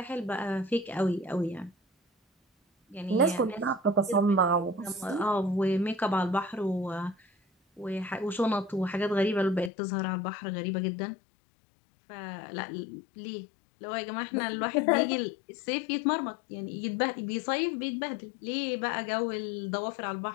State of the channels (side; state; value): right; drops out; at 9.7 s